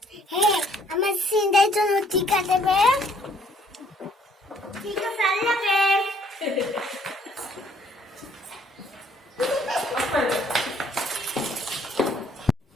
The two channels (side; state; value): both; normal; correlation 0.63